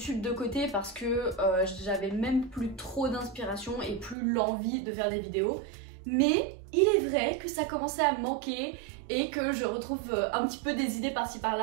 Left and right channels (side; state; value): left; drops out; at 4.2 s